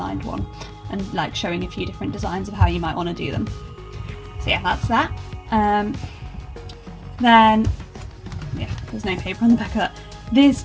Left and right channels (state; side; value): identical; both; correlation 1.00